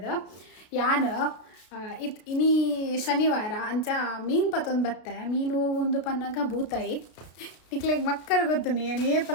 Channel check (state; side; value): late; right; 33 ms